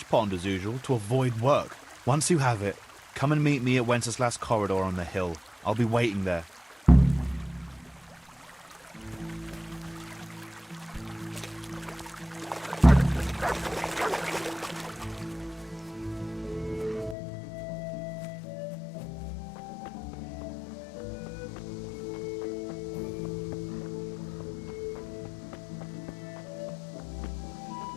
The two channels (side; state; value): right; drops out; at 17.2 s